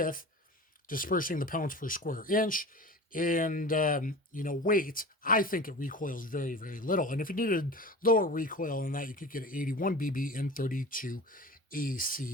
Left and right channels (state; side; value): normal; both; correlation 0.36